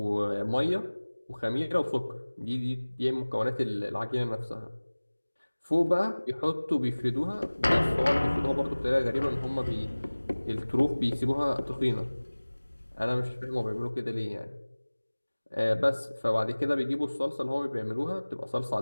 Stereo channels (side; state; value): both; inverted; correlation -1.00